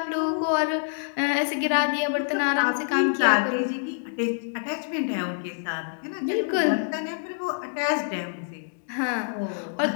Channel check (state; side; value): silent; right; digital silence